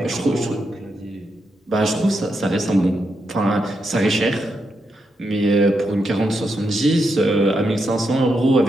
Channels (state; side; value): normal; both; correlation 0.83